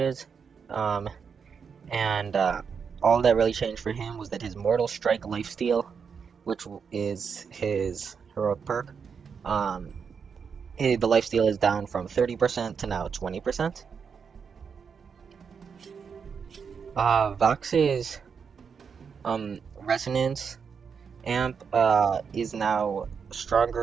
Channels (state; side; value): quieter; left; 6.3 dB